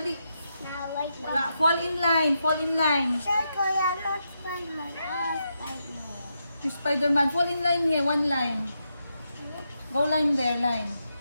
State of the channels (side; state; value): both; inverted; correlation -0.84